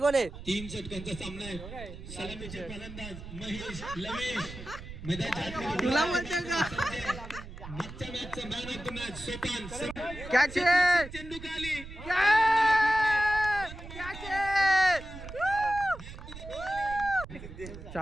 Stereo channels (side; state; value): right; noise; rumble, 12 dB below the sound